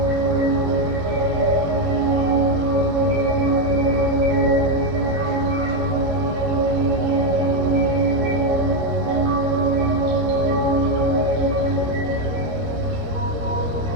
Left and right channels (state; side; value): late; left; 13 ms